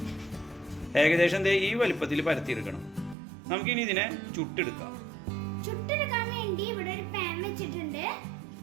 ഏകദേശം ഈ വലുപ്പത്തിൽ പരത്തിയെടുക്കണം. നമുക്കിനി ഇതിനെ ചുട്ടെടുക്കാം. ചുട്ടെടുക്കാൻ വേണ്ടി ഇവിടെ ഒരു പാൻ വെച്ചിട്ടുണ്ട്.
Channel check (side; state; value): left; drops out; at 3.2 s